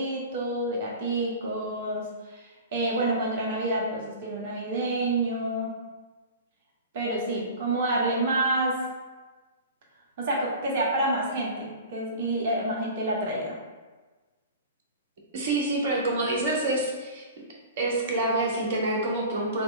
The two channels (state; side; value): inverted; both; correlation -0.37